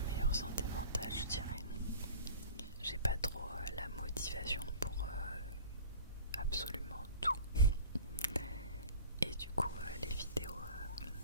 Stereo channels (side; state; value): both; inverted; correlation -0.42